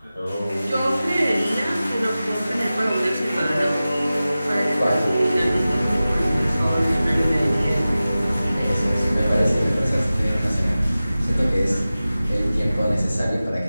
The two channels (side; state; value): both; inverted; correlation -0.96